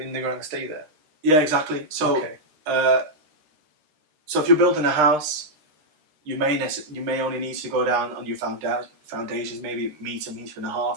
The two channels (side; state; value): left; late; 13 ms